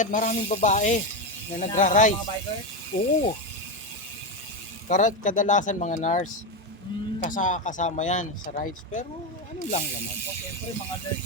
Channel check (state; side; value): normal; both; correlation 0.12